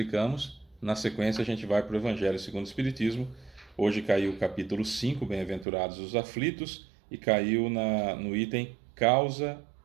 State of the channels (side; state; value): left; drops out; at 5.7 s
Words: Na sequência, a gente vai para o Evangelho segundo o Espiritismo. Hoje caiu o capítulo 5, Bem-aventurados os aflitos, e caiu no item